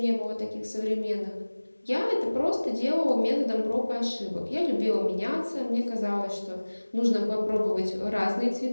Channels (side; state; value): both; inverted; correlation -1.00